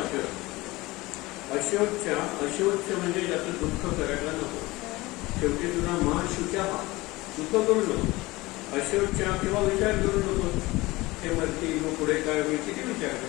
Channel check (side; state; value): right; quieter; 20.8 dB